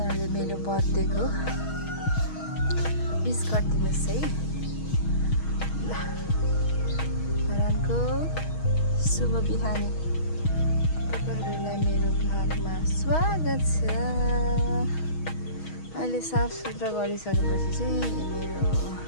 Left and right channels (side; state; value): right; late; 6.3 ms